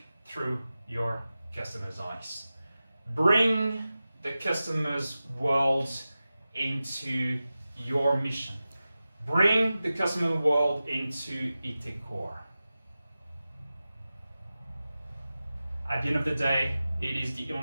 through your customer's eyes. Bring the customer's world into your mission. Bring the customer world into IT core. At the end of the day, it is the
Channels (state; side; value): inverted; both; correlation -0.95